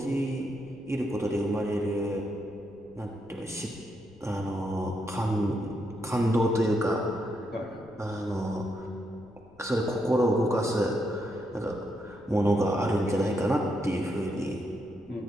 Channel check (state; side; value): noise; left; rumble, 26 dB below the sound